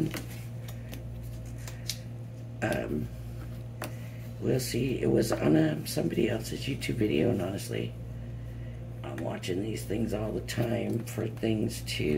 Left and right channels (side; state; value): both; identical; correlation 1.00